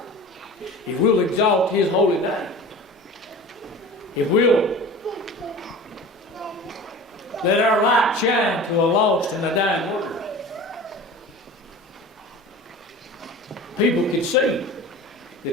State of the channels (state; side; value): normal; both; correlation 0.38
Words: if we'll exalt his holy name, if we'll let our light shine to a lost and a dying world, people can see